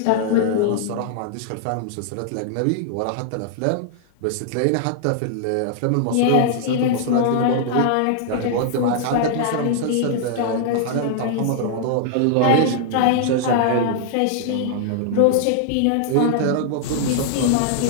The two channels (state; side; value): different; both; correlation -0.01